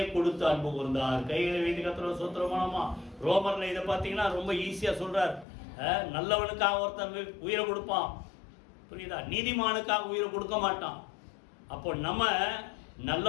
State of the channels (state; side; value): drops out; right; at 5.5 s